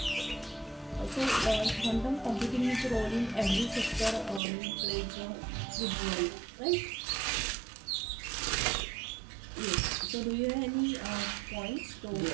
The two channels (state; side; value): drops out; left; at 4.4 s